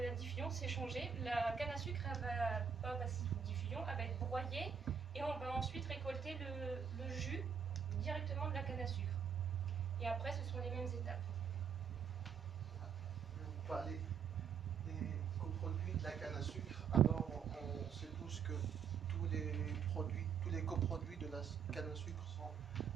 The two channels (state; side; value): quieter; left; 7.0 dB